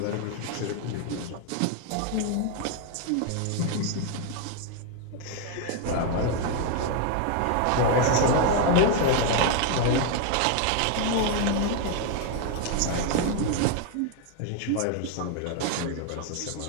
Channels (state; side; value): different; both; correlation 0.01